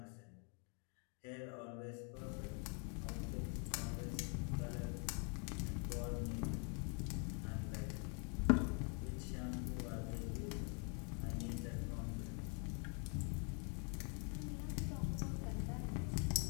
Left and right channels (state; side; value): quieter; right; 37.3 dB